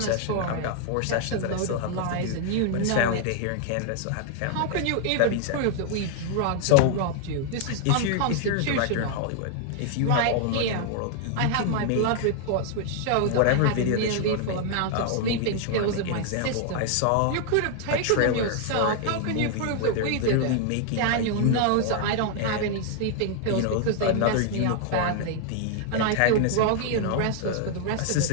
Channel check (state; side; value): different; both; correlation 0.00